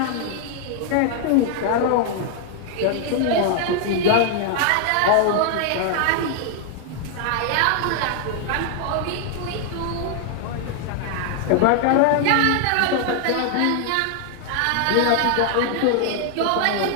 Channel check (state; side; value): different; both; correlation 0.00